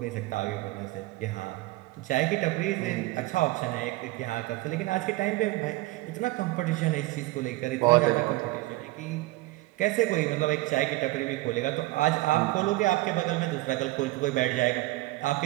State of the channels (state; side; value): quieter; left; 19.4 dB